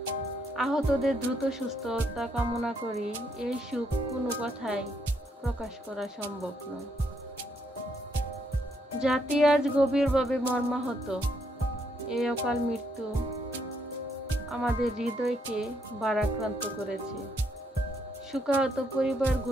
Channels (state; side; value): normal; both; correlation 0.74